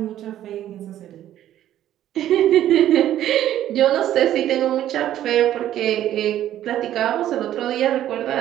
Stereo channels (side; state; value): left; quieter; 12.1 dB